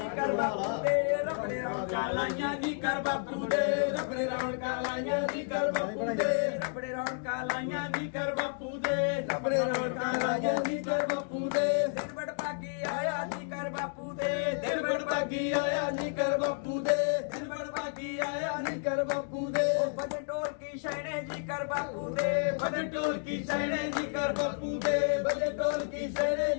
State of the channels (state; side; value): silent; right; digital silence